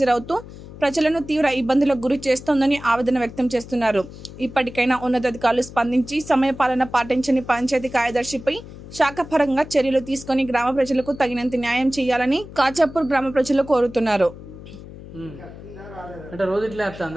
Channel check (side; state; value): left; noise; hum, 15 dB below the sound